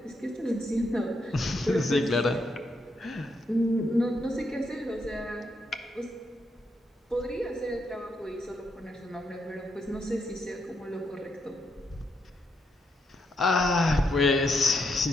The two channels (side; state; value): both; normal; correlation 0.80